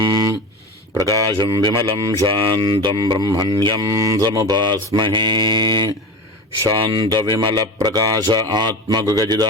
प्रकाशं विमलं शान्तं ब्रह्मण्यं समुपास्महे। शान्तविमलप्रकाश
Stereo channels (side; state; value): both; normal; correlation 0.28